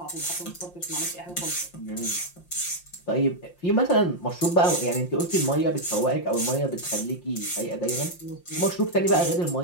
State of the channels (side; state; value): right; late; 5.7 ms